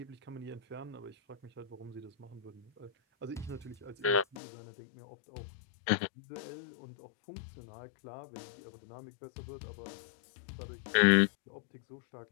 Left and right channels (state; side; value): drops out; right; at 4.4 s